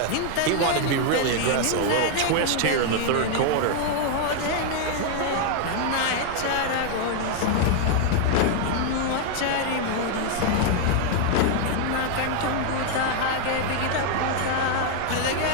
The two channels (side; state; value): both; different; correlation 0.00